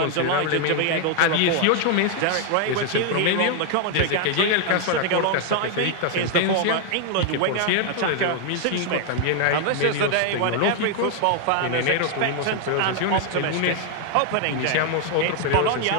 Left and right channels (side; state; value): both; different; correlation 0.00